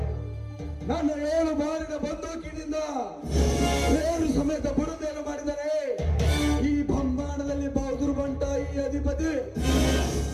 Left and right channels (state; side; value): identical; both; correlation 1.00